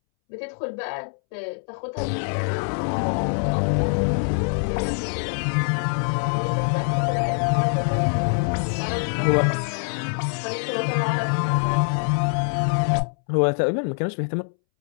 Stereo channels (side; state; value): right; silent; 63 dB below the other